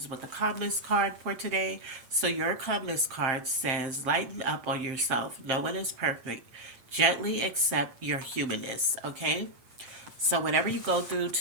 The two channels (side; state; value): left; late; 8.8 ms